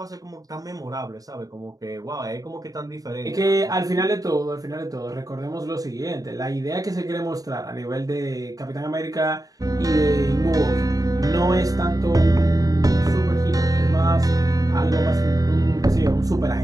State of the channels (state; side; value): late; left; 0.18 ms